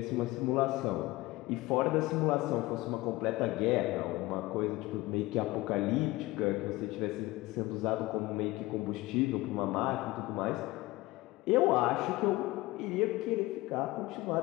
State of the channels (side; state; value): right; quieter; 19.7 dB